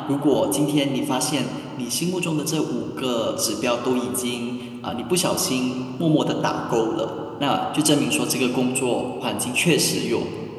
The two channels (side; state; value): both; identical; correlation 1.00